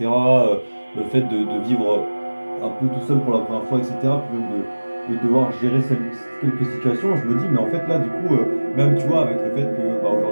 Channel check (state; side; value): inverted; both; correlation -1.00